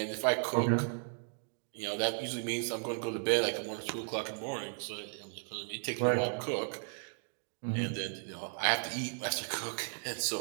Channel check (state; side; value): silent; left; 54 dB below the other